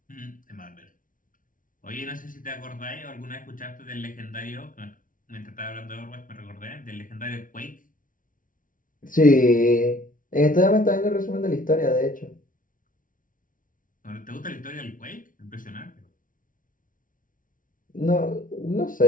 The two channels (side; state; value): right; late; 0.39 ms